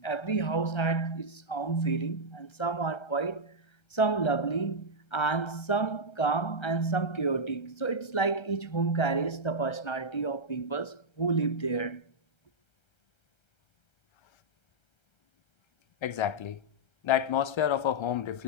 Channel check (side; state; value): right; late; 1.3 ms